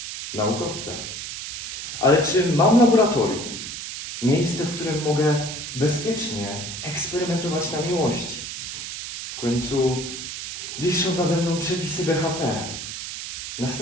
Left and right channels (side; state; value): right; noise; hiss, 7 dB below the sound